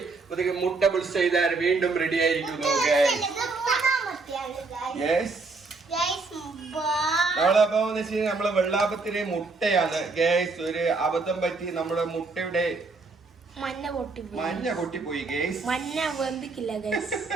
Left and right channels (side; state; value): left; quieter; 3.9 dB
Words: മുട്ട ബുൾസ് ചെയ്താൽ വീണ്ടും റെഡി ആയിരിക്കുന്നു ഗൈസ്. നമ്മളപ്പോ നമ്മളെ വെള്ളാപ്പത്തിന് മുട്ടയാണ് ഗൈസ്. ഒരു അബദ്ധം പറ്റി നമ്മുടെ മുട്ടയുടെ മഞ്ഞ പൊട്ടിപ്പോയി ഗൈസ്. മഞ്ഞ വെന്തിക്കില്ല ഗൈസ്.